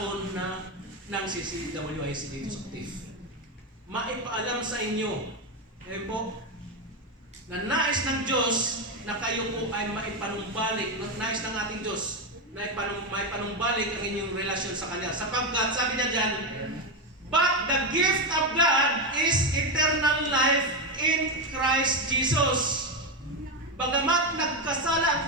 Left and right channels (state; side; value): normal; both; correlation 0.10